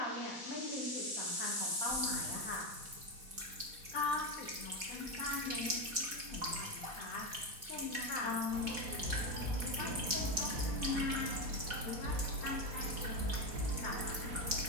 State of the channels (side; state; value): left; late; 4.1 ms